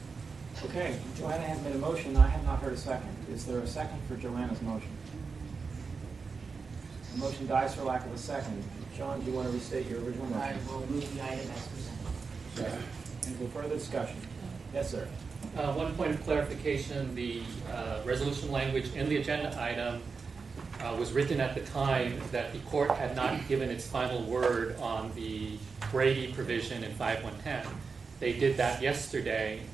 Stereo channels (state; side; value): quieter; left; 4.9 dB